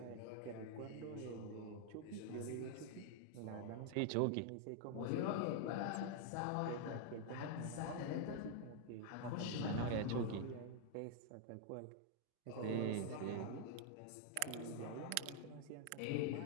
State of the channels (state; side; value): different; both; correlation 0.00